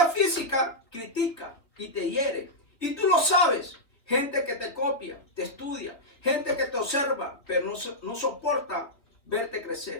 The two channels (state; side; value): late; right; 3.5 ms